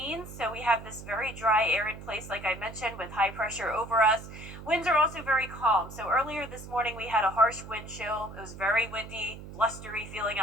so we have this very dry air in place, like I mentioned, with high pressure over us. Winds are also very calm. So earlier this morning, we had a harsh wind chill. It was very windy, blustery feeling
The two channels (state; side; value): noise; right; hum, 13 dB below the sound